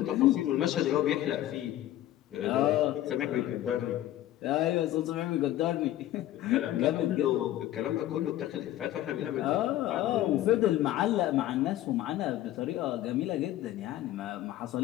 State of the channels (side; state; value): right; quieter; 13.7 dB